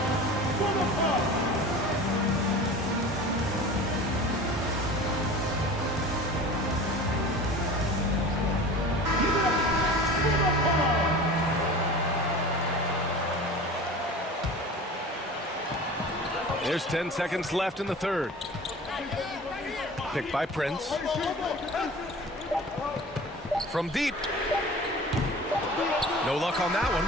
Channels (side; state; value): both; normal; correlation 0.38